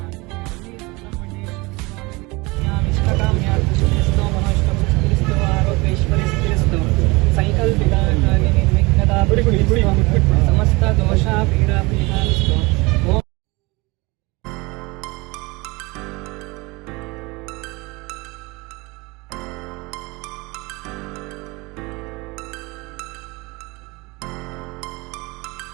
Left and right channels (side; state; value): left; quieter; 24.5 dB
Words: ಸಮಸ್ತ ದೋಷ ಪೀಡಾ ಪರಿಹಾರಸ್ತು.